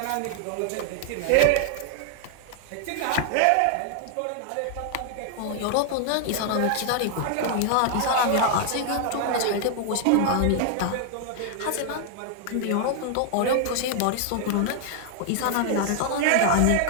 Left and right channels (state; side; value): different; both; correlation 0.00